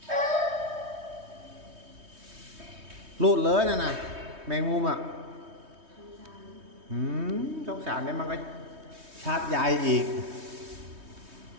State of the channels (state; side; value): late; left; 3.2 ms